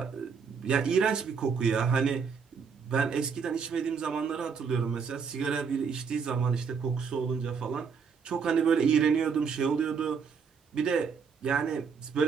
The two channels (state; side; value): quieter; left; 6.0 dB